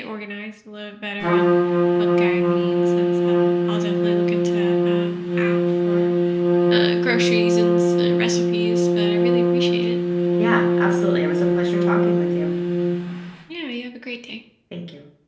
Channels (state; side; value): identical; both; correlation 1.00